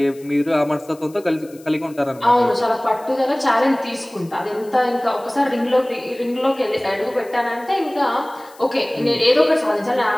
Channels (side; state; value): left; noise; hiss, 25 dB below the sound